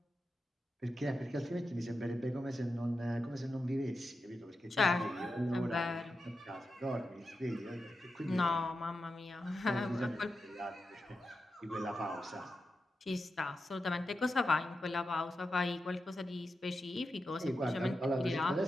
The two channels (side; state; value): both; normal; correlation 0.89